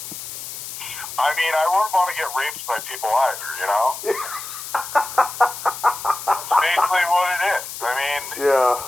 I mean, I wouldn't want to get raped by people either, you know? That's basically what it is. I mean, Yeah.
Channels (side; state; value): left; noise; hiss, 9 dB below the sound